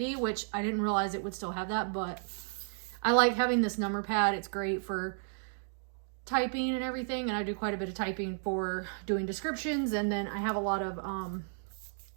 which I didn't realize it would still have that, but I like having this number pad. It's great for typing and everything, and I do quite a bit of typing for doing descriptions, and then I have a lot of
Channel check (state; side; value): silent; left; digital silence